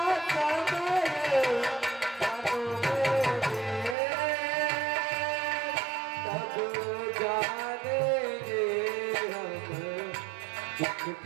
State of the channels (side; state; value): left; drops out; at 4.0 s